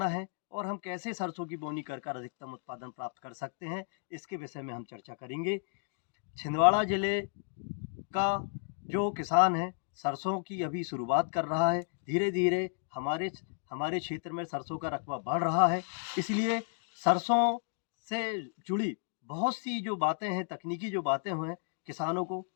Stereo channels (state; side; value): silent; right; 56 dB below the other